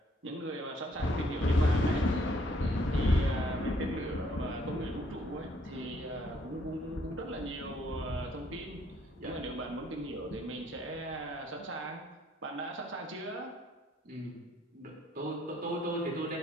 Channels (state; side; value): normal; both; correlation 0.66